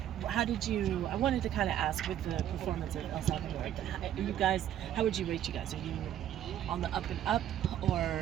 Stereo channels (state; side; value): quieter; left; 11.2 dB